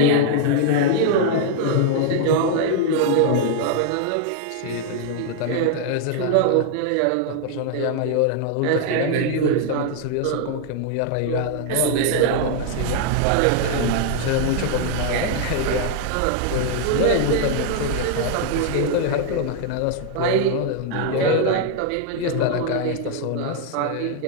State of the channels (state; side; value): different; both; correlation 0.00